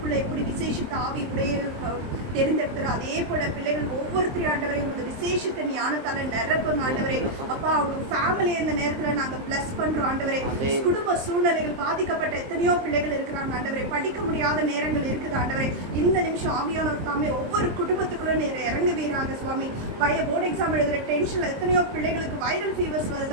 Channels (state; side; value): late; left; 23 ms